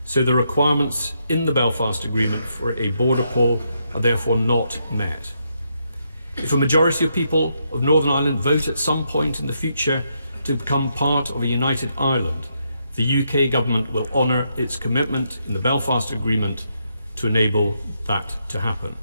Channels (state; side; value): inverted; both; correlation -0.79